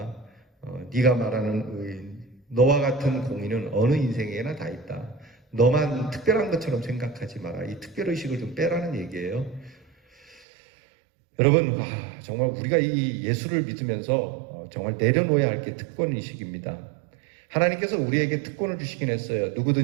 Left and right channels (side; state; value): left; drops out; at 10.5 s